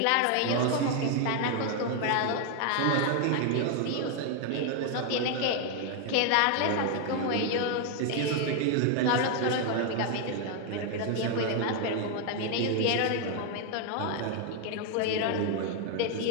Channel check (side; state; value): both; different; correlation 0.01